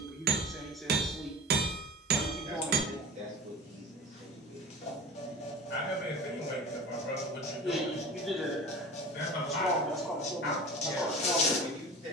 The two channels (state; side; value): normal; both; correlation 0.35